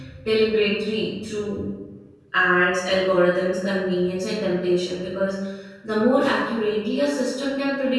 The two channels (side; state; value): both; identical; correlation 1.00